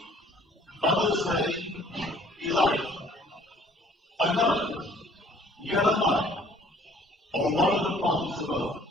others say Elijah, and others Jeremiah, or one of the prophets of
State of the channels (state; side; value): normal; both; correlation 0.57